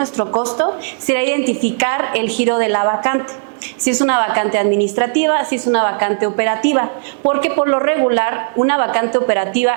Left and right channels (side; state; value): left; silent; 64 dB below the other